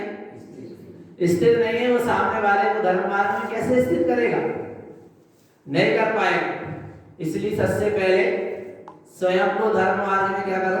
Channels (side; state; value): both; identical; correlation 1.00